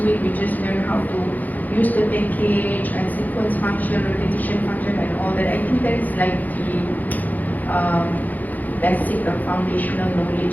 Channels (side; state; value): right; late; 0.082 ms